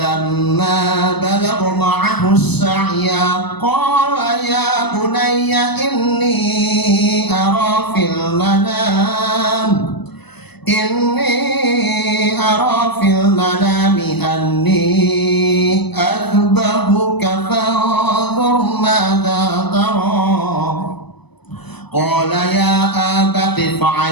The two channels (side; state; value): right; late; 0.99 ms